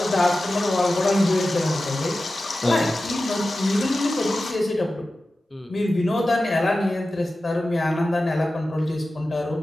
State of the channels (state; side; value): normal; both; correlation 0.94